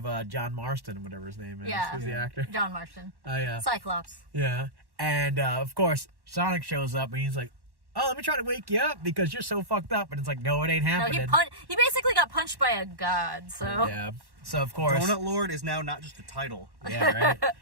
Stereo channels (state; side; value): late; left; 1.1 ms